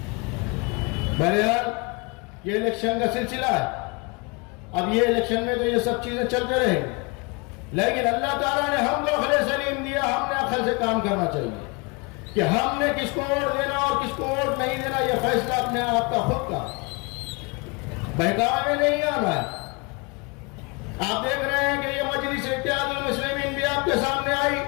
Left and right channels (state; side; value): quieter; right; 30.0 dB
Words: बहरहाल ये इलेक्शन का सिलसिला है, अब ये इलेक्शन में तो ये सब चीजें चलते रहेंगी, लेकिन अल्लाह ताला ने हमको अक्ल सलीम दिया, हमने अक्ल से काम करना चाहिए कि हमने किसको वोट देना और किसको वोट नहीं देना, यह फैसला अपने आप का खुद का, बहकावे में नहीं आना है। आप देख रहे हैं कि ये मजलिस इत्तेहादुल मुस्लिमीन भी आपके सामने आई,